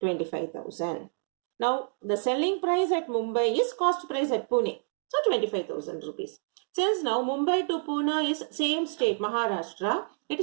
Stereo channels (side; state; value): left; silent; 59 dB below the other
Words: Now, the selling price at Mumbai is cost price at Pune. So, 25,000 rupees. Since now Mumbai to Pune is same state, Maharashtra, it